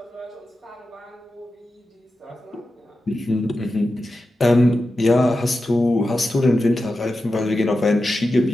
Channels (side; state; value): both; normal; correlation 0.91